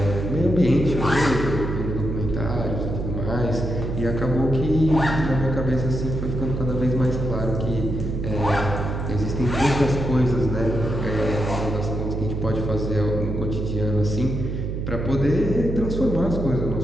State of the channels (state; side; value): noise; right; hum, 3 dB below the sound